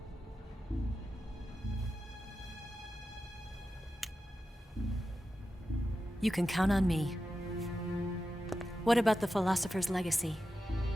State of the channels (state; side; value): normal; both; correlation 0.91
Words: You can count on me. What about the philosopher's legacy?